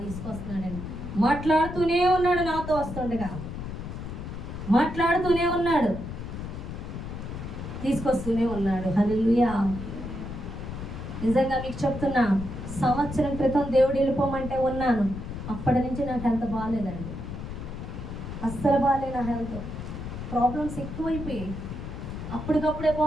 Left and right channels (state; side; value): noise; left; rumble, 8 dB below the sound